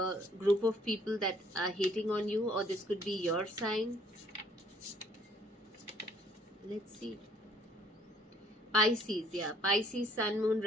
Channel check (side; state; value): both; normal; correlation 0.61